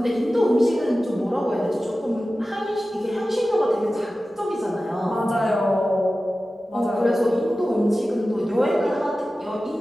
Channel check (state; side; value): normal; both; correlation 0.95